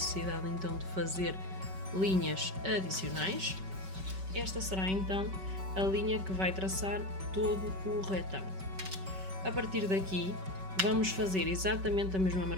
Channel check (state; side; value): late; left; 5.2 ms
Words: então de fazer linhas adicionais. Esta será então a linha que vai traçar todo o retângulo. A partir daqui vamos fazer exatamente a mesma